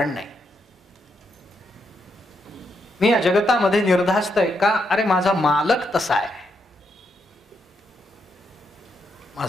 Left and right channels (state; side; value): normal; both; correlation 0.80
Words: नाही. मी या जगतामध्ये निर्धास्त आहे का? अरे माझा मालक तसा आहे.